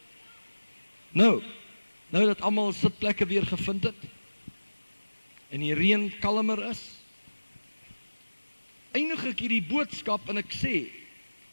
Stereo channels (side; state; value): both; inverted; correlation -1.00